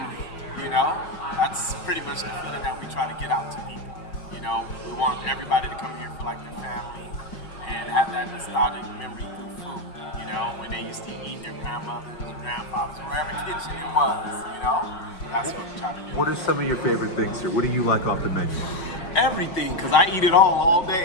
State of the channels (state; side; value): late; right; 5.5 ms